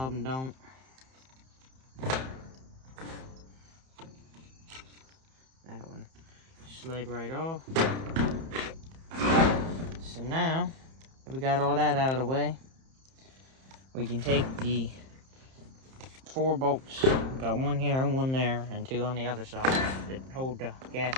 them don't. That one slid right off. So now that we got all that out of the way, we can take the 4 bolts. We got one here and one there and 2 on the other side that hold the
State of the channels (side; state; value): left; late; 30 ms